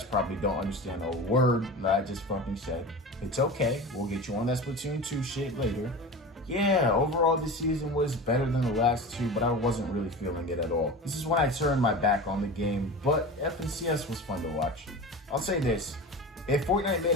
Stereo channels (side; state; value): both; normal; correlation 0.31